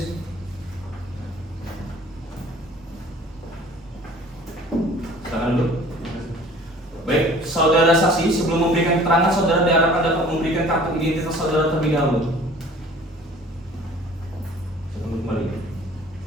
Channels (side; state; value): both; normal; correlation 0.49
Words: Silakan dulu. Baik, saudara saksi, sebelum memberikan keterangan, saudara diharapkan dapat memberikan kartu identitas saudara terlebih dahulu. Silakan kembali.